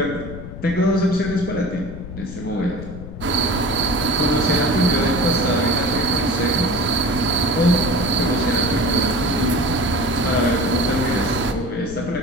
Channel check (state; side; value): noise; left; rumble, 11 dB below the sound